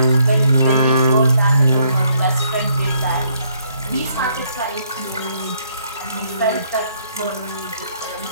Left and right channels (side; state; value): both; inverted; correlation -0.70